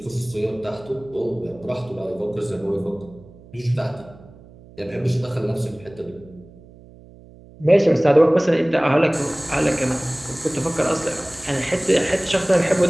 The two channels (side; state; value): right; noise; hum, 22 dB below the sound